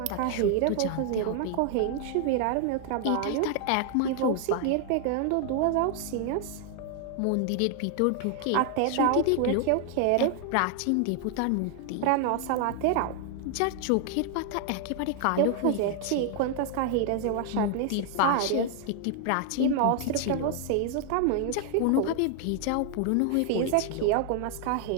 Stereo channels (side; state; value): both; different; correlation 0.00